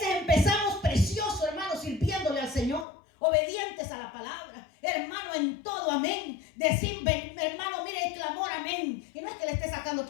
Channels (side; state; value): right; drops out; at 2.9 s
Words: empezamos precioso, hermanos, sirviéndole al Señor, obedientes a la palabra, hermano, en todo, amén. Decir, hermano, mire el clamor, amén. Y no es que le esté sacando